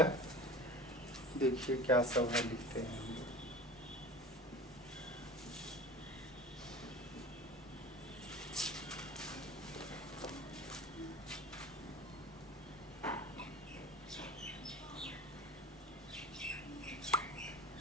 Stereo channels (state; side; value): normal; both; correlation 0.36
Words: देखिए क्या सब है, लिखते हैं।